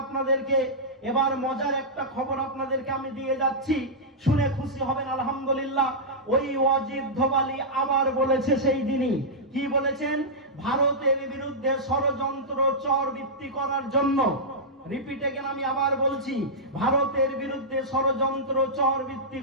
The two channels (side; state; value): both; normal; correlation -0.11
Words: আপনাদেরকে, এবার মজার একটা খবর আপনাদেরকে আমি দিয়ে যাচ্ছি, শুনে খুশি হবেন আলহামদুলিল্লাহ। ওই ওয়াজিদ ধোবালি আবার বলেছে সেই দিনই, কি বলেছেন? ভারতের বিরুদ্ধে ষড়যন্ত্র চরবৃত্তি করার জন্য, রিপিট এগেন, আমি আবার বলছি, ভারতের বিরুদ্ধে ষড়যন্ত্র চরবৃত্তি